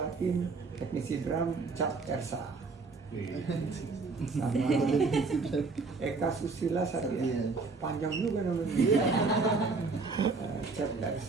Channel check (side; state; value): left; quieter; 4.1 dB